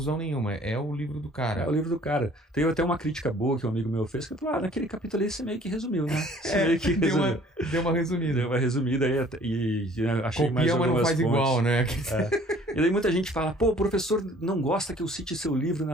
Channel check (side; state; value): both; normal; correlation 0.54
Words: nenhuma. É o livro do cara. É o livro do cara. Teve até uma crítica boa que um amigo meu fez, que falou, naquele capítulo ali você meio que resumiu, né? Deu uma resumida. Deu uma resumida e achei Copia, mais algumas mas não faz fontes. Igual, né? E daí muita gente fala, o professor não gosta que eu cite seu livro